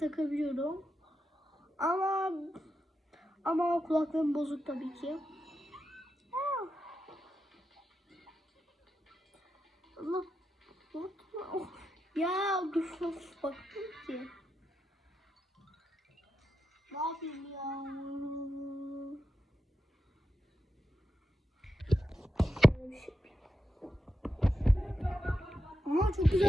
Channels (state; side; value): normal; both; correlation 0.88